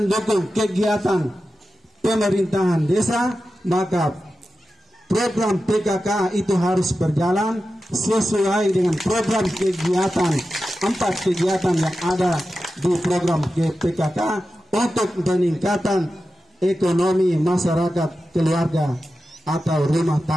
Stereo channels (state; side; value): normal; both; correlation 0.92